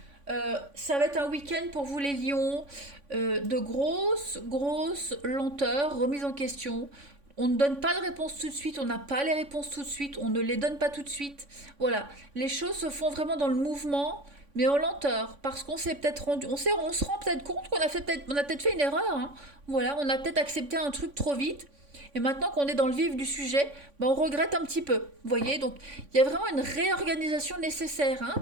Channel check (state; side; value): late; left; 3.5 ms